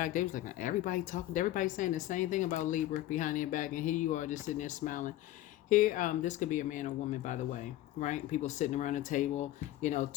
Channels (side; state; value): right; quieter; 14.7 dB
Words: they was like, everybody saying the same thing about Libra behind their back, and here you are just sitting there smiling. Here, this could be a man or woman, by the way, right? People sitting around a table,